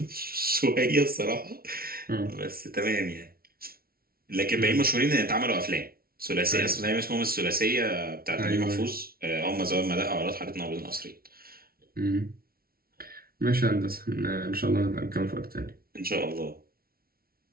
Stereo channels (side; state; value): left; late; 0.44 ms